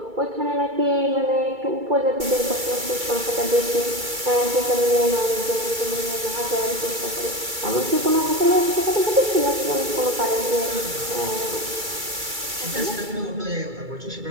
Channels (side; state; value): left; late; 2.3 ms